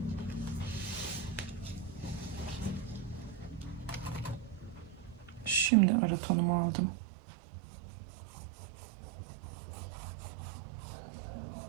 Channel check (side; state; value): left; drops out; at 5.7 s